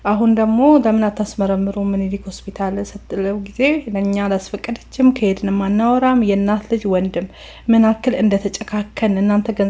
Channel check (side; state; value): both; identical; correlation 1.00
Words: አሁን ደግሞ ለምን አታስመረምሩ ምኒልክ ሆስፒታል ስትለው ጊዜ ለእኛ አላስፈቀደችም፣ ከሄድንም አናወራም። የእናት ልጅ ወንድም ምን አክል እንደተጨካከን እናንተ